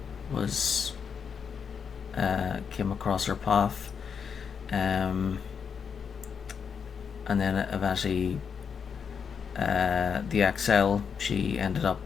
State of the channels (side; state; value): right; quieter; 6.6 dB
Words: was came across her path, and then eventually the exile, she ended up